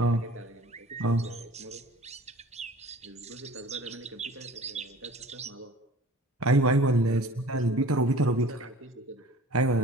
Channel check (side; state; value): both; normal; correlation 0.45